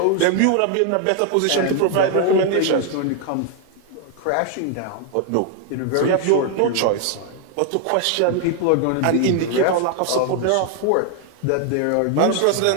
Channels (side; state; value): both; different; correlation 0.00